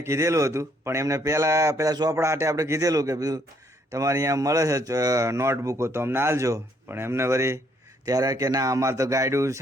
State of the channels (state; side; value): normal; both; correlation 0.68